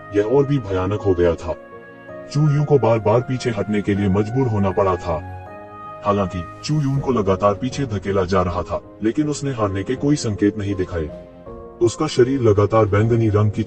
यह और भी भयानक हो गया था। चू यून को बार बार पीछे हटने के लिए मजबूर होना पड़ा था। हालांकि चू यून को लगातार पीछे धकेला जा रहा था, लेकिन उसने हारने के कोई संकेत नहीं दिखाए। उसका शरीर लगातार बैंगनी रंग की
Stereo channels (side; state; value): both; identical; correlation 1.00